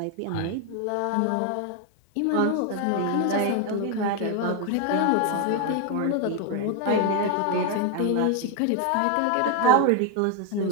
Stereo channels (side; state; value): both; different; correlation 0.01